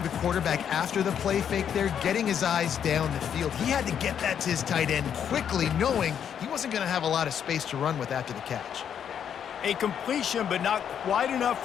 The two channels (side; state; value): right; quieter; 8.5 dB